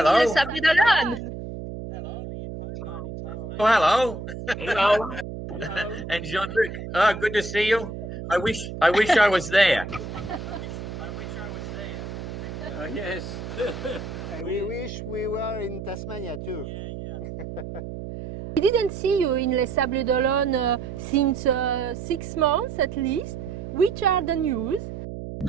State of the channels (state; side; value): noise; right; hum, 8 dB below the sound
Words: in Les Sables d'Olonne. Oh, hello. Hello. And Jean-Luc. Oh, good to see you. I wish I was there. Yes. We wish we were in Tasmania too. We didn't see you in Les Sables d'Olonne since 6 months at least. Which are the news?